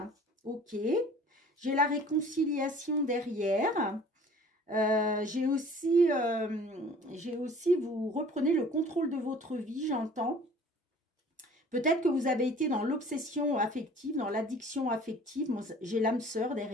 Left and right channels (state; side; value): normal; both; correlation 0.49